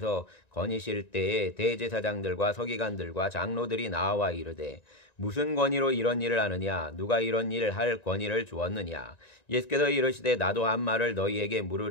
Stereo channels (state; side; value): late; right; 1.9 ms